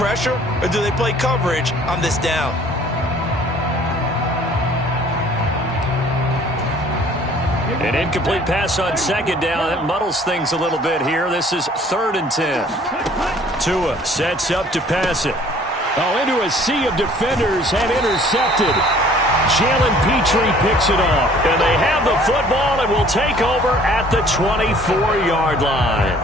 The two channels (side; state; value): both; normal; correlation 0.54